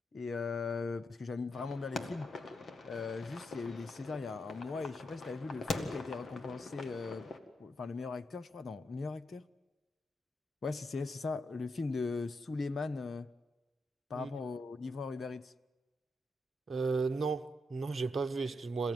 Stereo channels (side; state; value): both; normal; correlation 0.83